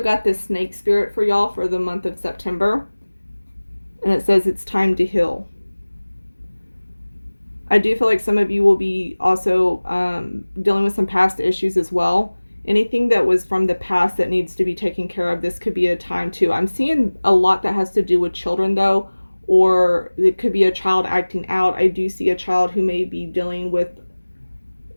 got this snake spirit for y'all for the month of September, and it says it's time to heal. I do feel like some of you will be also dealing with some past issues as well. Anything that was from the past that needs to be taken care of, this could be a time too. I'm seeing a lot that has to do with children though, or it could be a child acting out. I do see a child who may be dealing with,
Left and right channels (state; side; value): inverted; both; correlation -1.00